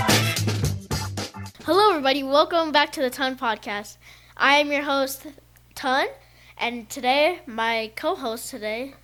everybody. Welcome back to the Ton Podcast. I am your host, Ton, and today, my co-host today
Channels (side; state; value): both; identical; correlation 1.00